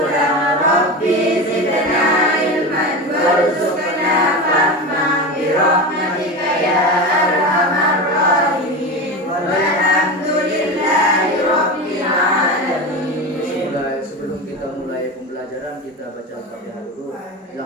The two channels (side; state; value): both; normal; correlation 0.24